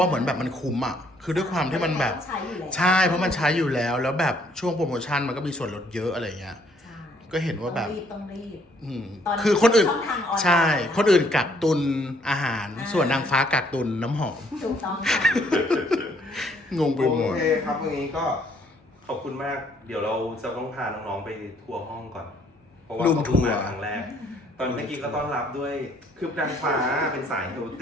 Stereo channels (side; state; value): both; normal; correlation 0.66